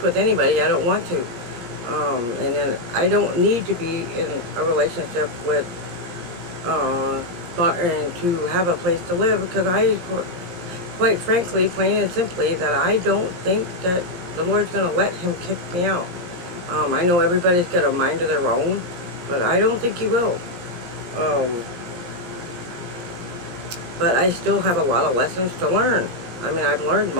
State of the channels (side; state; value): left; late; 17 ms